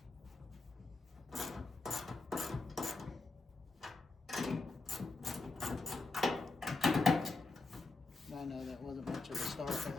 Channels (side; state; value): right; quieter; 3.4 dB